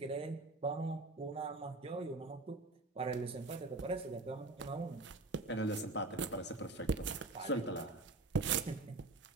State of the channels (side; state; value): left; quieter; 3.2 dB